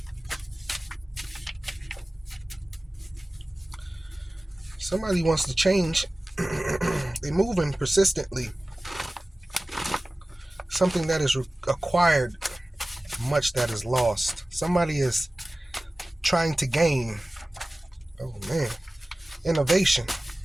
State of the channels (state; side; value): normal; both; correlation 0.97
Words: Somebody wants to change. They're moving persistently. Something that is acquired, much that is lost. Somebody is trying to gain. Oh man, innovation.